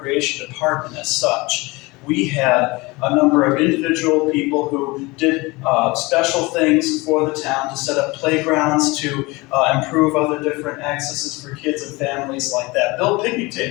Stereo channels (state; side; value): quieter; right; 23.7 dB